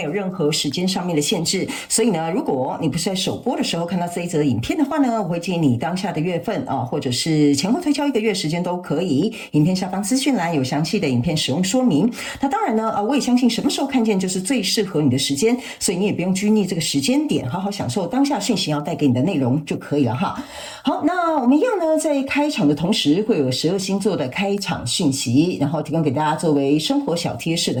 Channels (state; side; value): identical; both; correlation 1.00